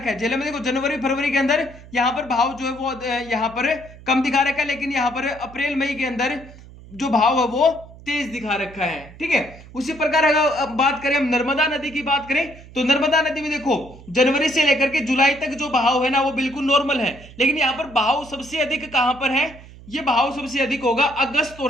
है, झेलम में देखो जनवरी, फरवरी के अंदर यहाँ पर भाव जो है वो यहाँ पर कम दिखा रखा है, लेकिन यहाँ पर अप्रैल, मई के अंदर जो भाव है वो तेज दिखा रखा है। ठीक है, उसी प्रकार अगर बात करें हम नर्मदा नदी की बात करें तो नर्मदा नदी में देखो जनवरी से लेकर के जुलाई तक जो बहाव है ना वो बिल्कुल नॉर्मल है, लेकिन यहाँ पर बहाव सबसे अधिक कहां पर है, ये बहाव सबसे अधिक होगा अगस्त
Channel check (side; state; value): right; noise; hum, 19 dB below the sound